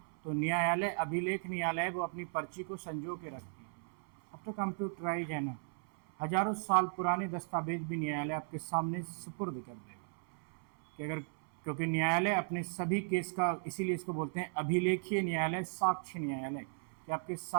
तो न्यायालय, अभिलेख न्यायालय, वो अपनी पर्ची को संजो के रखती है। अब तो कंप्यूटराइज है ना, हजारों साल पुराने दस्तावेज भी न्यायालय आपके सामने सुपुर्द कर देगा कि अगर, क्योंकि न्यायालय अपने सभी केस का, इसीलिए इसको बोलते हैं अभिलेखीय न्यायालय, साक्ष्य न्यायालय, कि आपके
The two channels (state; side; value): silent; left; 54 dB below the other